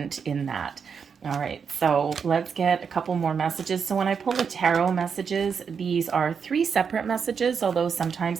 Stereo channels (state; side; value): quieter; left; 6.4 dB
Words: in that. All right, so let's get a couple more messages. So when I pull the tarot messages, these are 3 separate messages, although sometimes